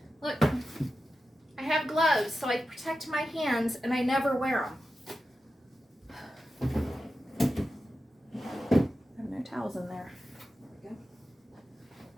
Look, I have gloves so I protect my hands and I never wear them. I have no towels in there.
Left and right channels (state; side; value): normal; both; correlation 0.91